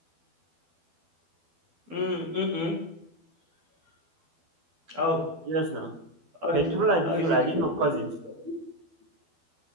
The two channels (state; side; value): late; left; 12 ms